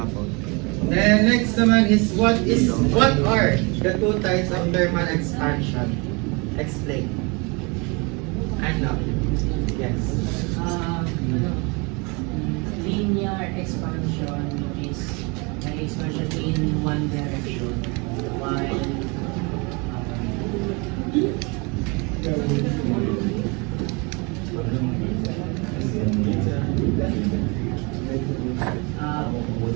Then next naman is what are the two types of thermal expansion? Explain. Ano? Yes. Linear expansion is an expansion in one direction, while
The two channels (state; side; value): quieter; left; 29.5 dB